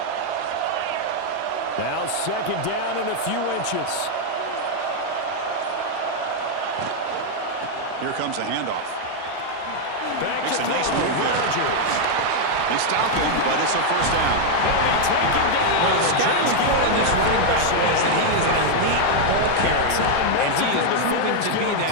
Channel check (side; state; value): both; different; correlation 0.00